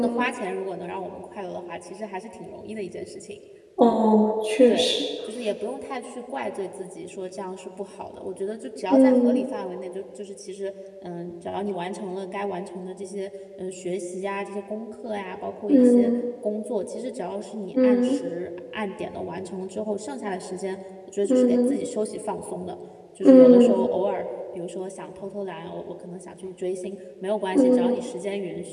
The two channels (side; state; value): both; identical; correlation 1.00